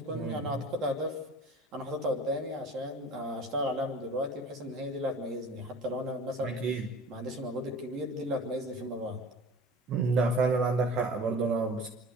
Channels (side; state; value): both; normal; correlation 0.42